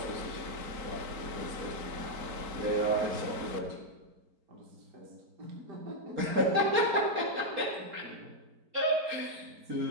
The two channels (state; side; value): late; left; 4.3 ms